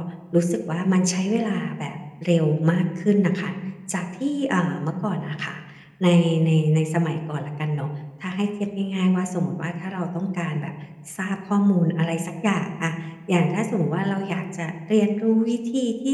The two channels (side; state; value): both; identical; correlation 1.00